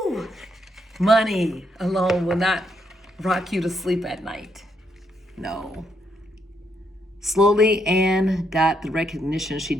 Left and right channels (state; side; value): normal; both; correlation 0.77